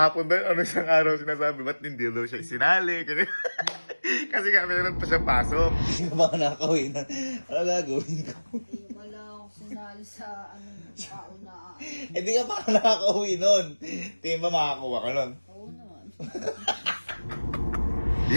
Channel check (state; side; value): inverted; both; correlation -1.00